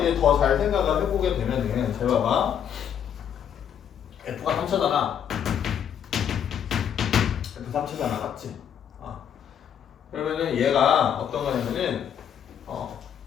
더 잘 생각을 해보게 되면은 잘 봐봐, f가 3차잖아. f 3차잖아, 맞지? 그러면은 얘가 어떤 거냐면은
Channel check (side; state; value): right; quieter; 8.8 dB